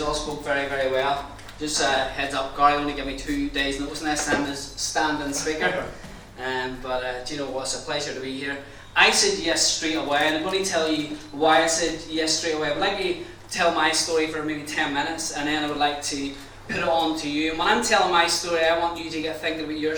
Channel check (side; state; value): both; identical; correlation 1.00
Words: all spoke very, very well. Just heads up, Gary only gave me 2 days notice next time as standing speaker. Do you know what? It's a pleasure to be here. I said yes straight away, and I'm going to tell you why I said yes straight away. I would like to tell my story for maybe 10 minutes, and then I would like to put it on to you. And when I'm telling my story, I want you to get thinking about your